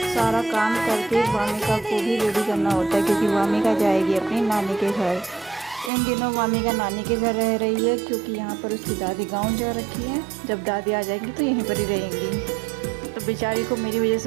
काम करके वामिका को भी रेडी करना होता है, क्योंकि वामिका जाएगी अपनी नानी के घर। इन दिनों वामिका नानी के घर रह रही है, क्योंकि यहाँ पर उसकी दादी गांव जा रखी है। जब दादी आ जाएंगी तो यहीं पर ही रहेंगी। तो बेचारी को मेरी वजह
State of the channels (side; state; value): left; drops out; at 5.9 s